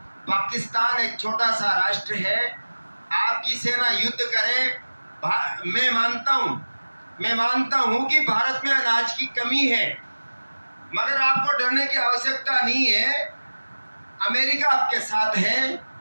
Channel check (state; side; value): inverted; both; correlation -1.00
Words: पाकिस्तान एक छोटा सा राष्ट्र है, आपकी सेना युद्ध करे। मैं मानता हूं कि भारत में अनाज की कमी है, मगर आपको डरने की आवश्यकता नहीं है। अमेरिका आपके साथ है